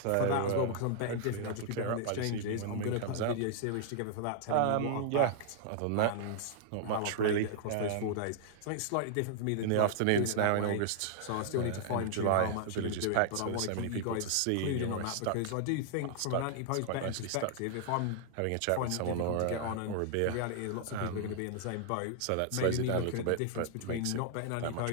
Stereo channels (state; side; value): different; both; correlation -0.01